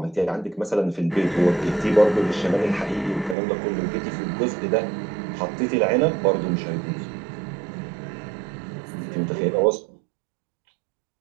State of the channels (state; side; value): drops out; left; at 3.4 s